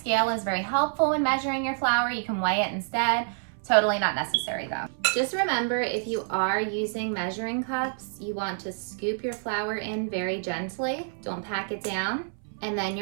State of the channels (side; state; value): left; silent; 60 dB below the other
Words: is very helpful when measuring your flour. You can weigh it instead. Totally not necessary though. Just remember, if you are using measuring cups, you want to scoop your flour in very gently. Don't pack it down. And then